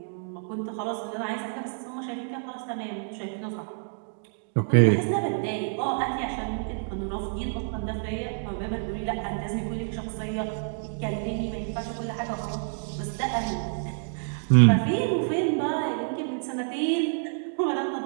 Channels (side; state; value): left; silent; digital silence